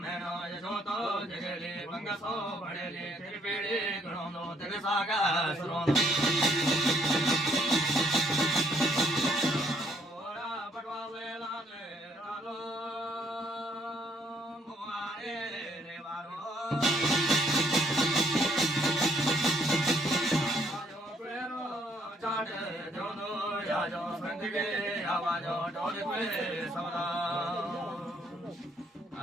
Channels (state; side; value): normal; both; correlation 0.67